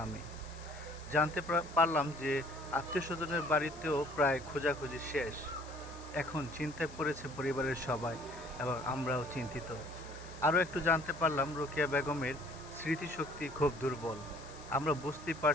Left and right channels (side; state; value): left; noise; hiss, 20 dB below the sound